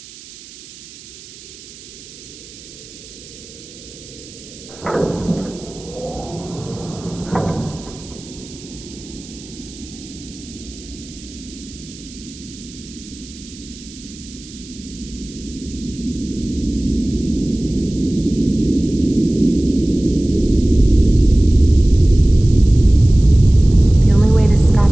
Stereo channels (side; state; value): right; noise; hiss, 18 dB below the sound